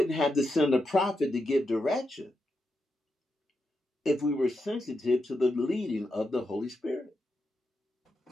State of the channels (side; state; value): both; normal; correlation 0.85